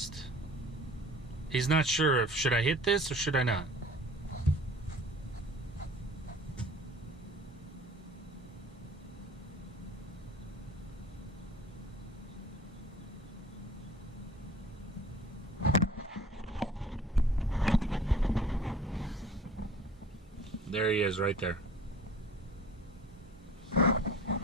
He's not sure if should I hit this or should I not. There he is right there.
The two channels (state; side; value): normal; both; correlation 0.46